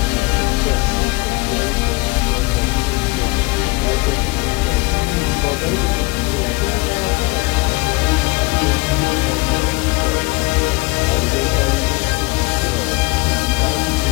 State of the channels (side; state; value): right; quieter; 24.0 dB